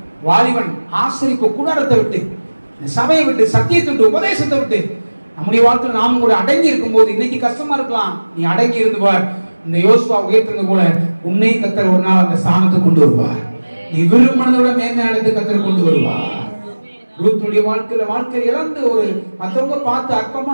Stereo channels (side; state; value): both; inverted; correlation -1.00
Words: வாலிபன் ஆசரிப்பு கூடாரத்தை விட்டு, சபையை விட்டு, சத்தியத்தை விட்டு, உபதேசத்தை விட்டு நம்முடைய வாழ்க்கையில் நாமும் கூட அடங்கி இருக்கும் போது, இன்னைக்கு கஷ்டமா இருக்கலாம், நீ அடங்கி இருந்து பார். இந்த யோசுவா உயர்த்தினது போல உன்னை கர்த்தர் ஒரு நாள் அந்த ஸ்தானத்தை கொண்டு வருவார். நீ விரும்பினதோட மேன்மை அடைந்து கர்த்தர் கொண்டு வருவார். ரூத்துடைய வாழ்க்கையில இழந்து ஒரு மற்றவங்க பார்த்து